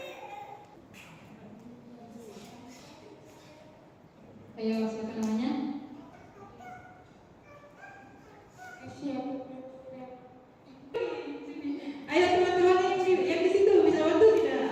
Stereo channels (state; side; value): identical; both; correlation 1.00